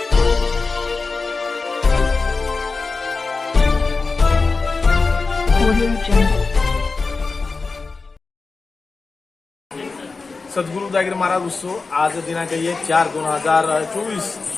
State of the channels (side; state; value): right; quieter; 4.1 dB